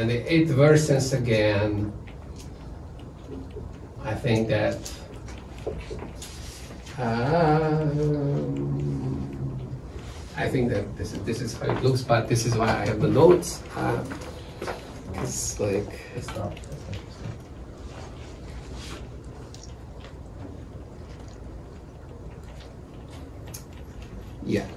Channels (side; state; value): both; identical; correlation 1.00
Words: it worsens again. I think that this is how it looks, but this is why I have the notes. It's like It's not. yeah.